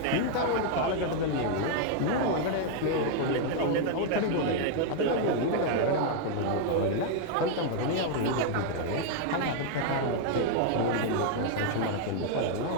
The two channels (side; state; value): both; different; correlation 0.00